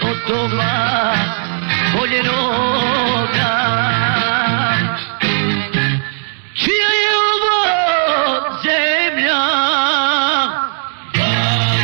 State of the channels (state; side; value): silent; left; 68 dB below the other